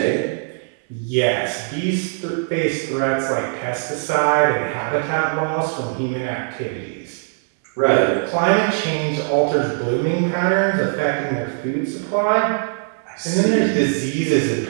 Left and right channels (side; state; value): left; silent; 62 dB below the other